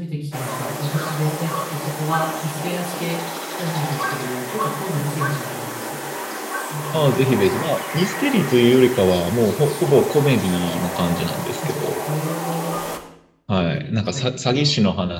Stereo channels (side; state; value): both; identical; correlation 1.00